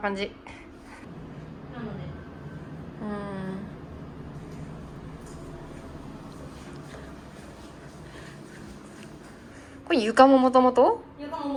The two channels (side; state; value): both; identical; correlation 1.00